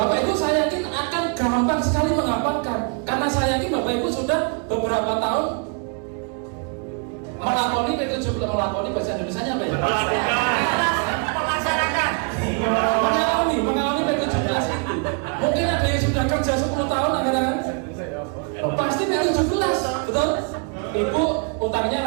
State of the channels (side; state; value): left; quieter; 38.9 dB